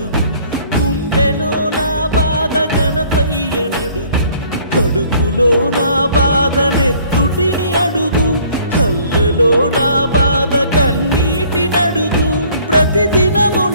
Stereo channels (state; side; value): inverted; both; correlation -0.57